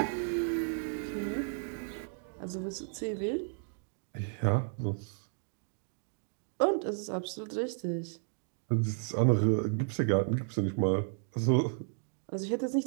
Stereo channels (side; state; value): left; silent; digital silence